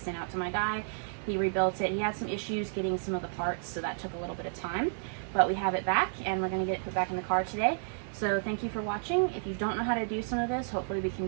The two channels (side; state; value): left; silent; digital silence